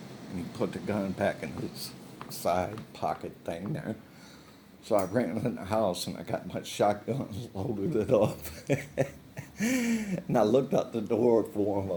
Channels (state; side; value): identical; both; correlation 1.00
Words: he put the gun back in his side pocket thing there. So I ran in the house and I got my shotgun and loaded it up. And I looked out the door for him. I